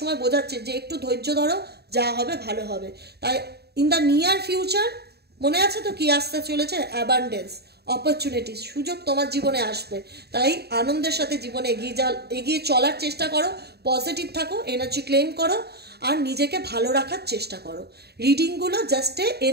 বোঝাচ্ছে যে একটু ধৈর্য ধরো, যা হবে ভালো হবে। তাই ইন দ্য নিয়ার ফিউচার মনে আছে তো কি আসতে চলেছে? অ্যাবান্ডেন্স, অপরচুনিটিস, সুযোগ তোমার জীবনে আসবে। তাই আনন্দের সাথে জীবনে এগিয়ে চলার চেষ্টা করো, পজিটিভ থাকো, এনার্জি ক্লেম করো আর নিজেকে ভালো রাখার চেষ্টা করো। রিডিংগুলো জাস্ট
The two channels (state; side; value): late; left; 0.47 ms